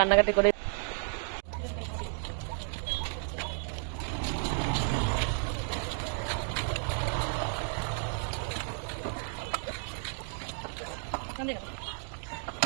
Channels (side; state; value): left; silent; 56 dB below the other